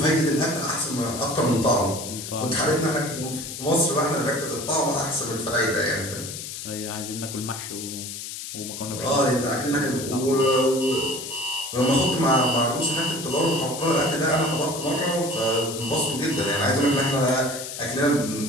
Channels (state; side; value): noise; left; hiss, 8 dB below the sound